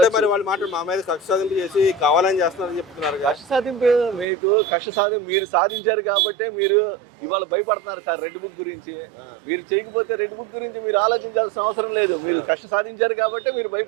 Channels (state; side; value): drops out; left; at 4.2 s